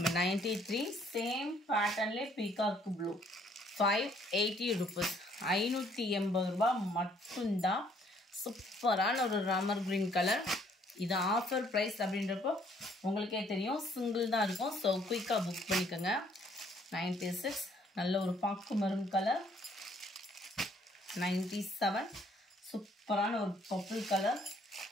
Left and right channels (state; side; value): normal; both; correlation 0.64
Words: 93 சேம் பேட்டர்ன்லேயே பீகாக் ப்ளூ 580 ருபீஸ். 580 ரூபாய் மட்டும்தான். சூப்பரான ஒரு ராமர் கிரீன் கலர். இது ஆஃபர் ப்ரைஸ் அப்படின்றப்போ உங்களுக்கே தெரியும், சிங்கிள் தான் இருக்கும். ஸோ குயிக்காக புக் பண்ணிக்கோங்க. 96 நல்ல ஒரு பாக்கு மரூன் கலர். 97 சூப்பரான ஒரு பர்பிள் கலர்.